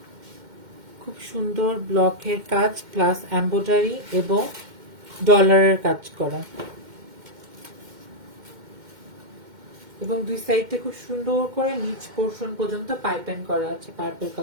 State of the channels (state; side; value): late; left; 2.1 ms